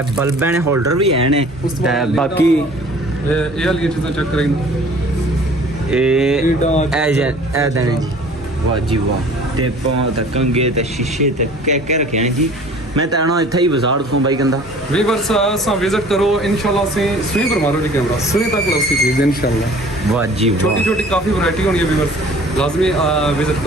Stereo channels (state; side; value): normal; both; correlation 0.49